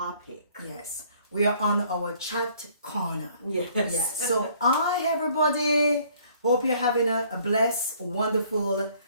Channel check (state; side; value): inverted; both; correlation -0.60